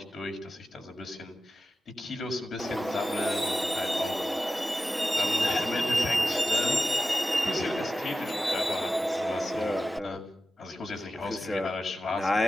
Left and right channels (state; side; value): normal; both; correlation 0.93